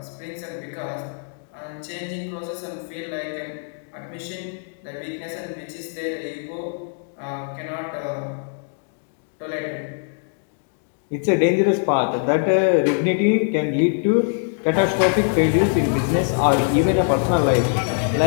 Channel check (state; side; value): silent; right; 57 dB below the other